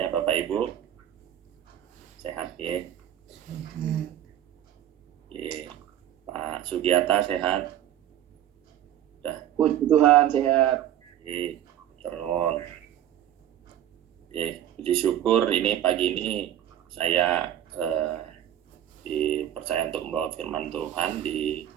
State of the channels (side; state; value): left; quieter; 11.3 dB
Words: Bapak Ibu? Sehat ya? Oke. Pak Sugiata sehat? Puji Tuhan, sehat. Terus, puji syukur ini pagi ini saya dipercaya untuk membawa firman Tuhan di